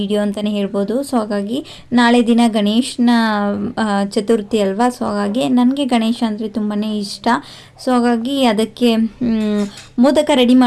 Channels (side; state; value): both; identical; correlation 1.00